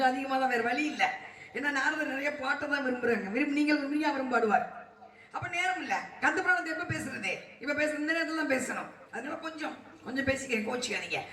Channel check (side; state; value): both; identical; correlation 1.00